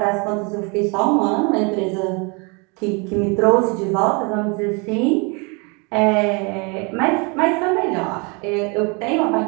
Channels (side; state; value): left; quieter; 31.4 dB